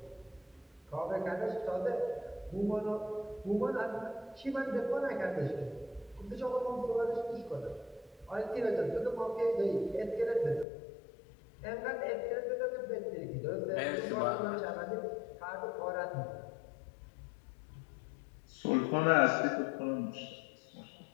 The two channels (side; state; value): right; drops out; at 10.7 s